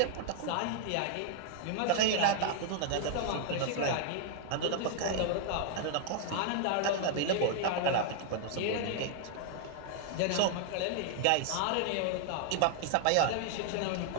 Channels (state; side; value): different; both; correlation 0.00